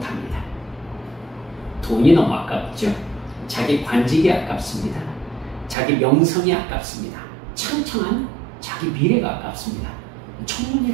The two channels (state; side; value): drops out; left; at 5.8 s